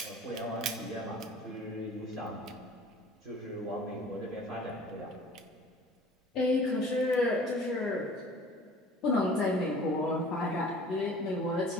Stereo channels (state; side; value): normal; both; correlation 0.47